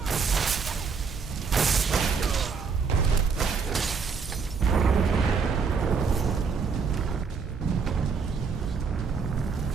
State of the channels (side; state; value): left; quieter; 5.5 dB